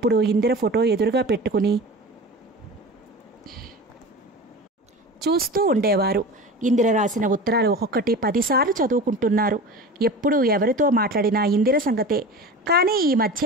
ఇందిర ఫోటో ఎదురుగా పెట్టుకుని చూస్తూ ఉండేవారు. ఇందిర రాసిన ఉత్తరాలు ఒక్కొక్కటి 10 సార్లు చదువుకుంటున్నారు. ఎప్పుడు ఎవరితో మాట్లాడినా ఇందిర సంగతే. కానీ ఈ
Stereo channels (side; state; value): both; normal; correlation 0.33